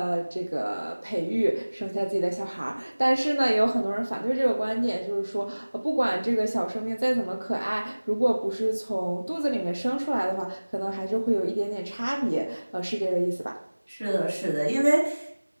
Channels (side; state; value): both; inverted; correlation -1.00